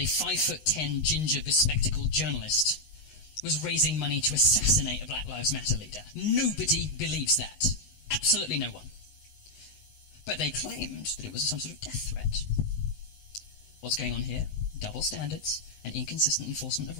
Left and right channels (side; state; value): right; late; 19 ms